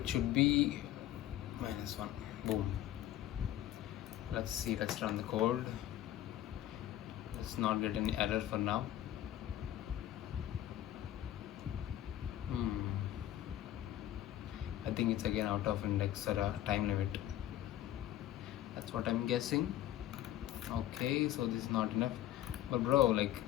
should be minus 1. Boom. Let's see. Let's run the code. Let's not get any error for now. I think it's again out of index or a time limit. That's what I'm guessing. Okay, so this is not enough. But bro, like,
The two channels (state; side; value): quieter; right; 12.9 dB